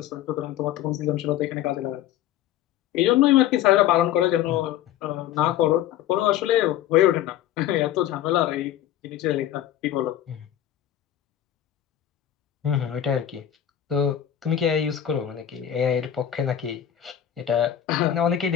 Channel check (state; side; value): quieter; right; 11.2 dB